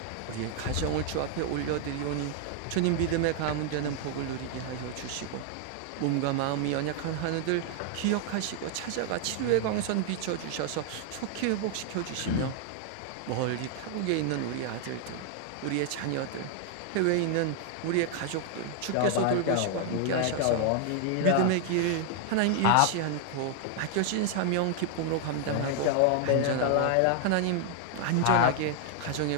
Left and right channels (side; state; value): both; different; correlation 0.00